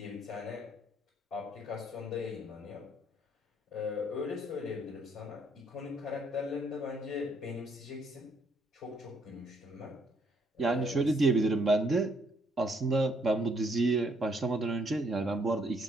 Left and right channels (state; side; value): normal; both; correlation 0.69